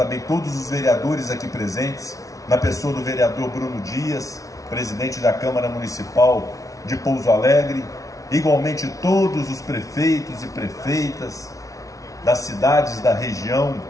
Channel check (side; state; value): right; late; 0.17 ms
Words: todos os vereadores aqui presentes, na pessoa do vereador Bruno Dias, presidente da Câmara Municipal de Pouso Alegre, igualmente todos os prefeitos e prefeitas das cidades da região